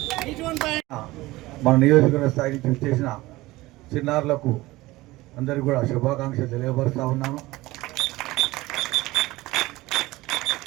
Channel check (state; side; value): quieter; left; 19.2 dB